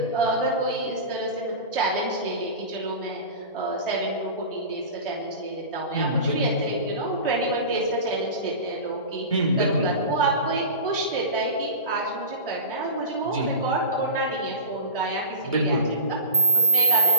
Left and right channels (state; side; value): inverted; both; correlation -0.32